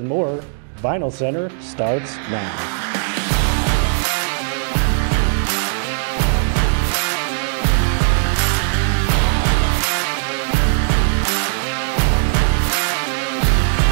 more. Vinyl Center starts now.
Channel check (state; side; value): silent; left; digital silence